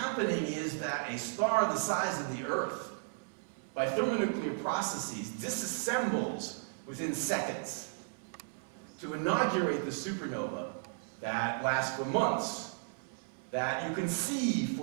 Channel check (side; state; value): left; silent; 55 dB below the other